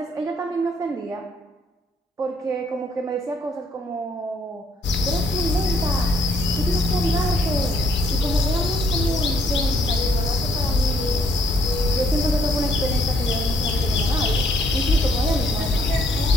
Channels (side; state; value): both; normal; correlation 0.68